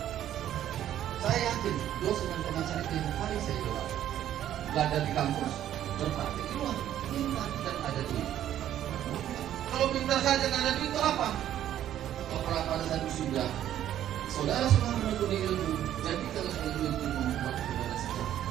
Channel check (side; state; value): left; quieter; 11.5 dB